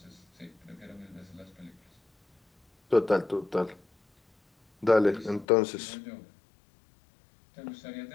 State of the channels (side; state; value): right; drops out; at 5.5 s